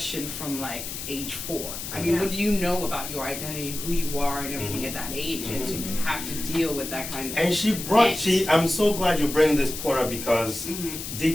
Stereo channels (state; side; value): noise; left; hiss, 7 dB below the sound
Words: from like age 4. I mean, what do you know about your identity, who you are, and everything at that age, and to have to deal with that kind of. And I'm so glad you bring this point up because